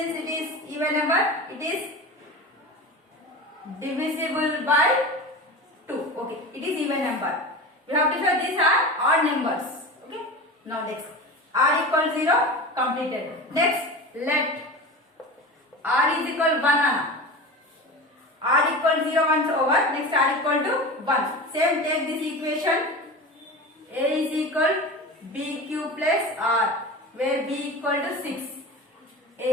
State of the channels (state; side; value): normal; both; correlation 0.30